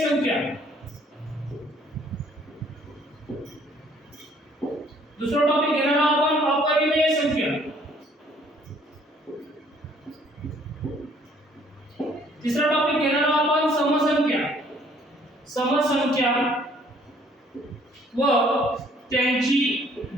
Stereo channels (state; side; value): normal; both; correlation 0.61